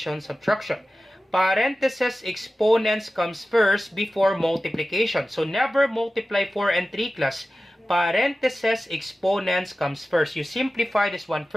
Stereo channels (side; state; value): both; normal; correlation 0.95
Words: subtraction. Parentheses, exponents comes first before multiplication. So never multiply 4 and 3, class. Parentheses, exponents comes first. You simplify this one